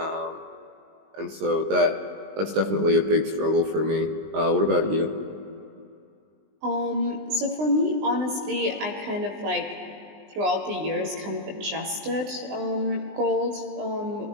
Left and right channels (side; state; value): left; late; 20 ms